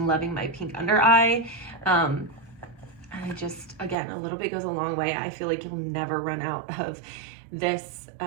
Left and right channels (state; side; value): drops out; left; at 4.0 s